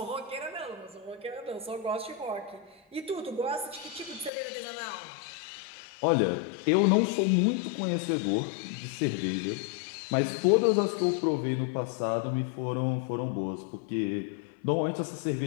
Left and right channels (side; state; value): right; drops out; at 4.3 s